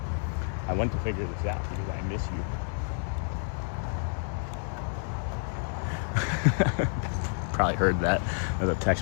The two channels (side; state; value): right; silent; 58 dB below the other